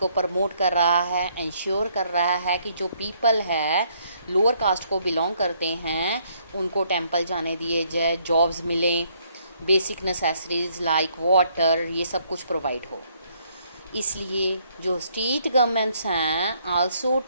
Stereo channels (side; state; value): both; inverted; correlation -0.69